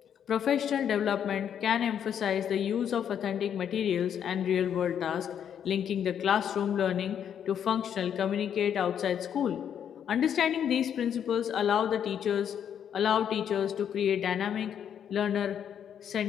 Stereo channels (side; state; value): right; quieter; 8.8 dB